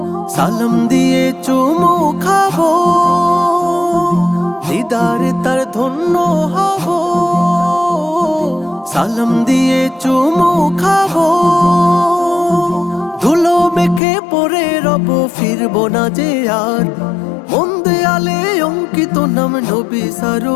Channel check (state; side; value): drops out; right; at 14.0 s